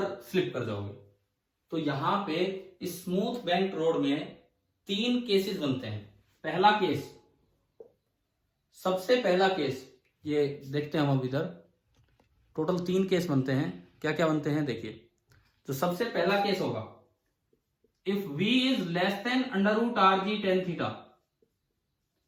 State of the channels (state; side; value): identical; both; correlation 1.00